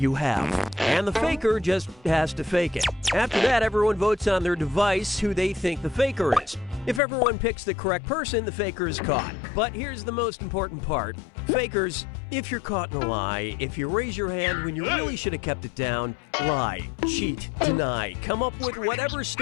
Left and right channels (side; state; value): right; drops out; at 7.0 s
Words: have. And the faker just has to fake it. After that, everyone votes on their device who they think the faker is. If everyone picks the correct person, the faker is caught. But here's the most important part. Fakers, if you're caught in a lie, if you raise your hand when you really should have kept it down, lie, cheat, deny, come up with whatever